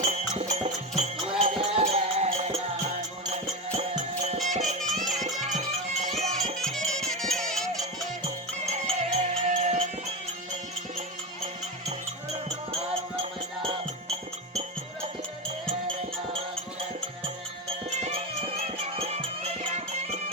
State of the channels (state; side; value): normal; both; correlation 0.17